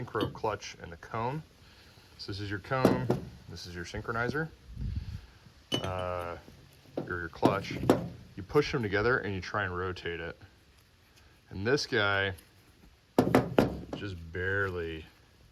clutch and the cone, so this is your cone, this is your synchronizer, or your clutch. You push them together and you try and rotate it. And this guy just barely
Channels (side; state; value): both; identical; correlation 1.00